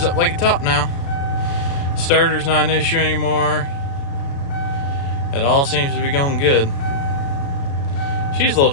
up like a top now. Starter's not an issue anymore. It all seems to be going good. She's a little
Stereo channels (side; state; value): right; late; 36 ms